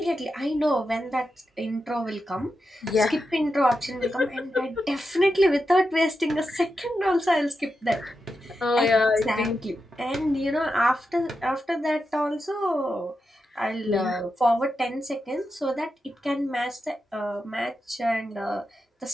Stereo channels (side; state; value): both; normal; correlation 0.88